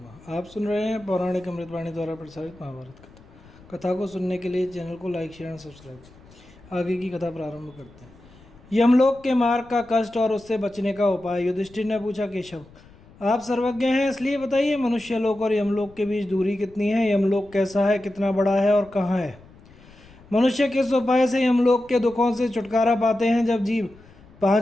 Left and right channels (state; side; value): noise; left; rumble, 24 dB below the sound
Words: आप सुन रहे हैं पौराणिक अमृतवाणी द्वारा प्रसारित महाभारत कथा। कथा को सुनने के लिए चैनल को लाइक शेयर एंड सब्सक्राइब करें। आगे की कथा प्रारंभ करते हैं। यमलोक के मार्ग का कष्ट और उससे बचने का उपाय। युधिष्ठिर ने पूछा, केशव आप सर्वज्ञ हैं, इसलिए बताइए मनुष्य लोक और यमलोक के बीच दूरी कितनी है? यमलोक कैसा है, कितना बड़ा है और कहाँ है? मनुष्य किस उपाय से यमलोक के दुखों से छुटकारा पाते हैं? जब जीव